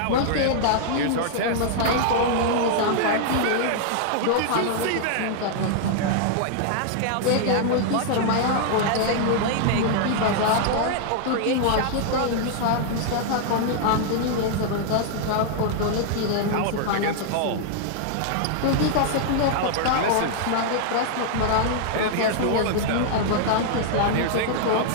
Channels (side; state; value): both; different; correlation -0.01